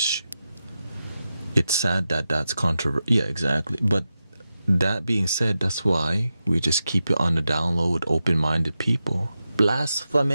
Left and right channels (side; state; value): both; inverted; correlation -0.90